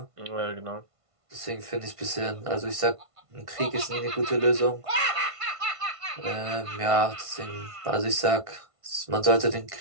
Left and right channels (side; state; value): left; late; 1.5 ms